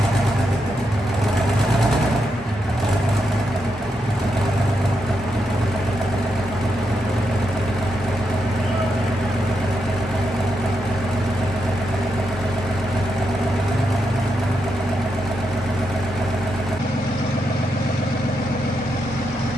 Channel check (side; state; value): both; normal; correlation 0.83